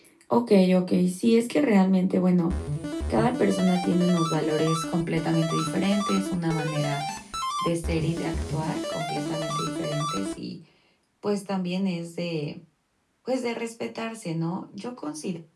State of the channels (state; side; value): identical; both; correlation 1.00